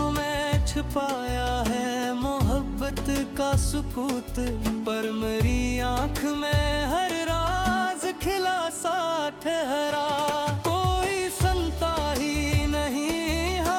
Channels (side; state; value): both; identical; correlation 1.00